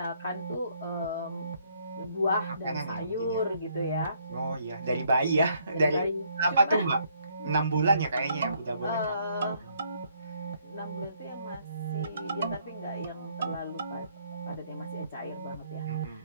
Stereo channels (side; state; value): both; inverted; correlation -0.68